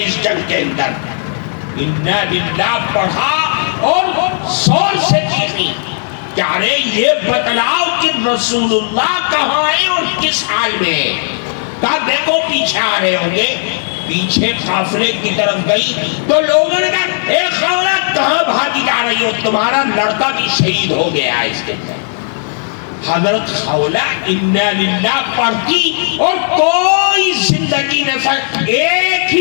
اس جنگ کے اندر۔ انا للہ پڑھا اور زور سے چیخی کہ ارے یہ بتلاؤ کہ رسول اللہ کہاں ہے اور کس حال میں؟ کہا دیکھو پیچھے آ رہے ہوں گے۔ پیچھے قافلے کی طرف گئی تو لوگوں نے کہا اے خولہ کہاں بھاگی جا رہی ہو، تمہارا لڑکا بھی شہید ہو گیا اس کے اندر۔ حضرت خولہ انا للہ پڑھتی اور کوئی زندگی نہ ایک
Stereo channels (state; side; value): silent; right; digital silence